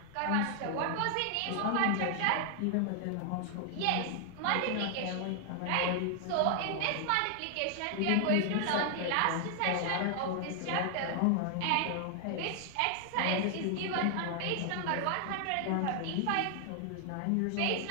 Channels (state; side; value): different; both; correlation 0.00